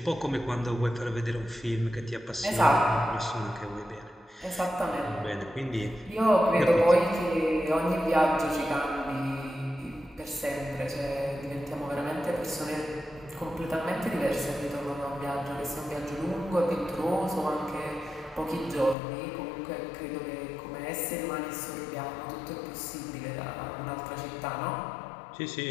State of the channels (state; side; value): drops out; right; at 18.9 s